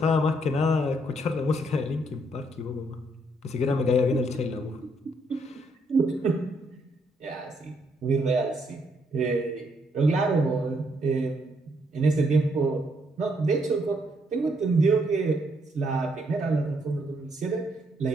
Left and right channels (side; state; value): both; normal; correlation 0.73